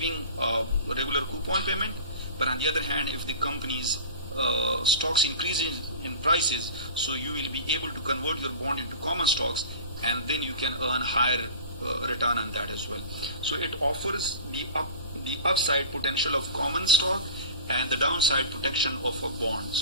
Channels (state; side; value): inverted; both; correlation -0.35